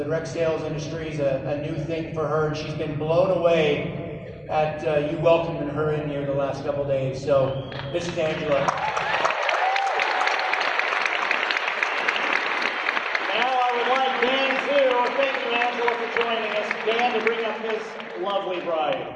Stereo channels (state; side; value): identical; both; correlation 1.00